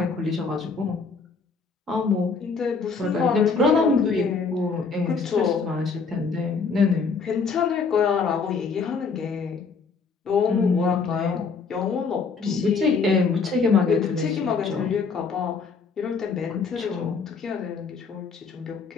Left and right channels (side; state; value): right; quieter; 5.0 dB